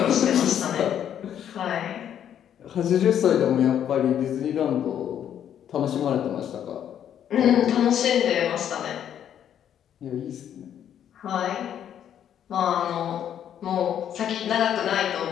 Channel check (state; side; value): quieter; right; 9.7 dB